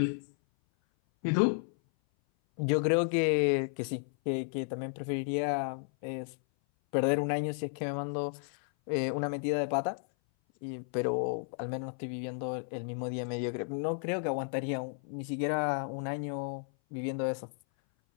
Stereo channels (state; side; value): silent; right; 56 dB below the other